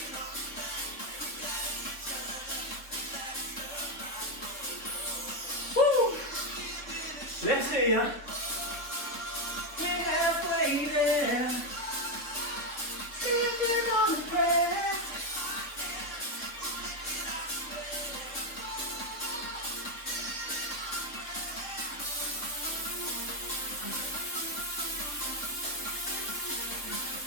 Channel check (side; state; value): right; late; 3.5 ms